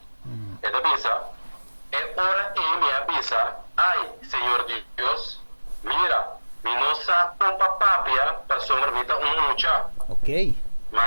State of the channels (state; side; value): inverted; both; correlation -1.00